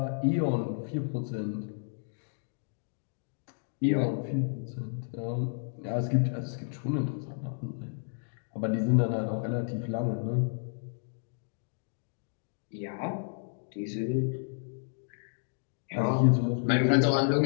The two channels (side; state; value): right; silent; digital silence